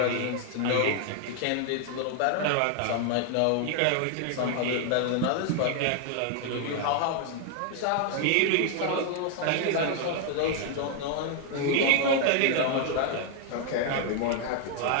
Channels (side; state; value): both; different; correlation 0.00